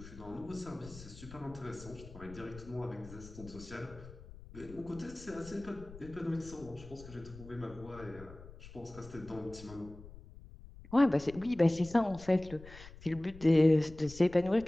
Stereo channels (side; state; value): left; noise; rumble, 17 dB below the sound